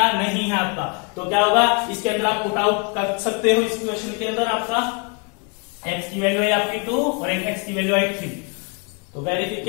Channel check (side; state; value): right; quieter; 35.1 dB